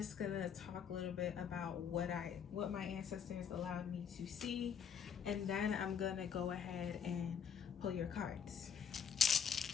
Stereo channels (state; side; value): quieter; right; 7.6 dB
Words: going to talk a little bit about what my ancestors allowed me to see, and then I'm going to go ahead and pull your cards.